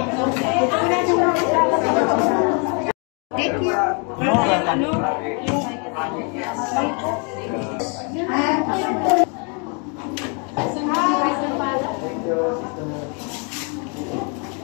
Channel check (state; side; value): quieter; right; 36.5 dB